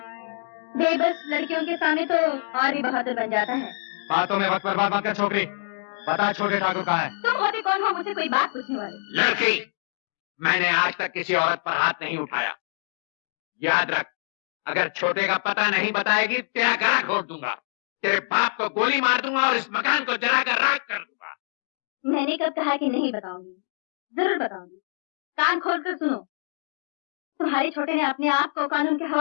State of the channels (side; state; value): right; silent; digital silence